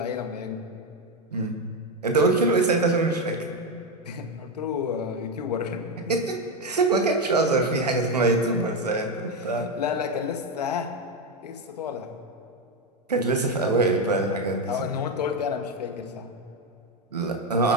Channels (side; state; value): both; normal; correlation 0.09